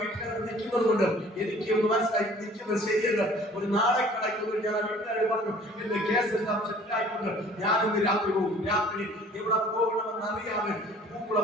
വീട്ടിനകത്ത് നിൽക്കുന്നത് കൊണ്ട് എനിക്ക് ഒന്ന് മനസ്സിലായി നിൽക്കുന്നത് ശരിയല്ല. ഒരു നാളെ കിടക്കുന്നു. ഞാൻ ആ വീട്ടുകാരോട് പറഞ്ഞു, എന്റെ കേസ് എല്ലാം സെറ്റിലായിട്ടുണ്ട്, ഞാനിന്ന് രാത്രി പോകും. രാത്രി എവിടെ പോകണമെന്ന് അറിയാതെ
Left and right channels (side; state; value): both; normal; correlation 0.51